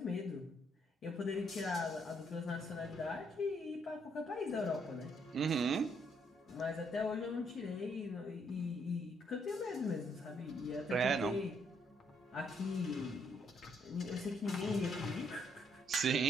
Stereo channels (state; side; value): normal; both; correlation 0.71